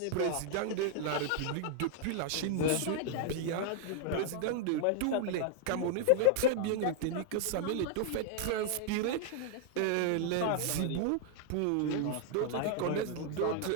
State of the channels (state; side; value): different; both; correlation 0.00